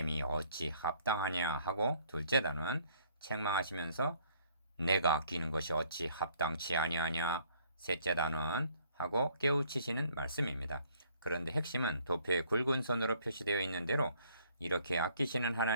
어찌 합당하냐 하고 둘째 단원 책망하시면서 내가 아끼는 것이 어찌 합당치 아니하냐 셋째 단원 하고 깨우치시는 말씀입니다. 그런데 핵심은 도표에 굵은 선으로 표시되어 있는 대로 이렇게 아끼시는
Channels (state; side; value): inverted; both; correlation -0.61